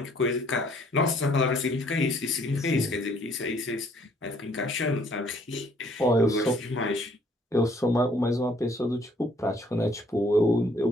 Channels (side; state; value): both; normal; correlation 0.63